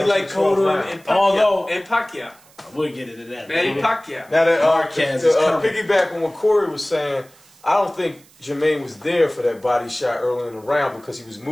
He's like Cotto and Pacquiao. We'll get into that. Manny Pacquiao. Now that Marquez is coming. piggyback on what Corey was saying, I don't think Jermaine was there for that body shot early in the round because he was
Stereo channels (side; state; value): right; noise; hiss, 28 dB below the sound